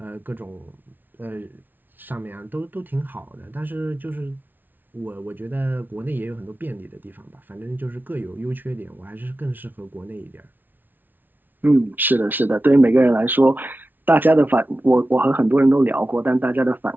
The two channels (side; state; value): left; late; 0.088 ms